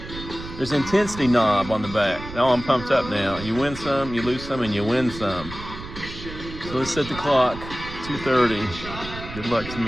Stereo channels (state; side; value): noise; right; rumble, 12 dB below the sound